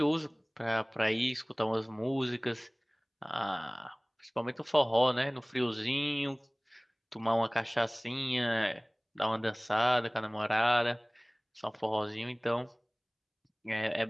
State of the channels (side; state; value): both; identical; correlation 1.00